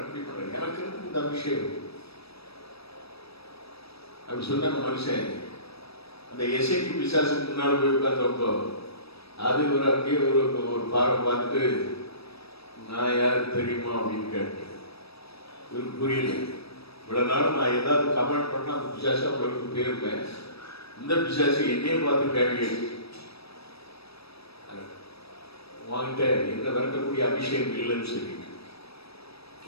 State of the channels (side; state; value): right; late; 0.77 ms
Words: அப்படி பண்றேன், எனக்கு இருக்கு இந்த அபிஷேகம் அப்படி சொன்ன மனுஷன் அந்த எசைக்கு பிசாசுக்கு முன்னாடி போய் உட்கார்ந்தப்போ அது ஒரு அப்படியே ஒரு பார்வை பார்த்துட்டு, நான் யாரு தெரியுமா அப்படின்னு கேட்டேன். இவருக்கு புரியல. இவ்வளவு நாள் நான் ஏதாவது கமெண்ட் பண்ணா அந்த பிசாசு அவங்களுக்கு போயிருப்பேன். இந்த பிசாசு என்னையே பார்த்து கேள்வி வாங்கிட்ட என்ன விளக்கக்கூடிய அபிஷேகம் இல்லைன்னு சொல்லி